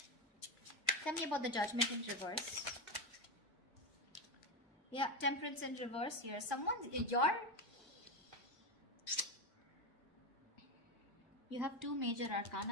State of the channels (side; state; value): both; normal; correlation 0.14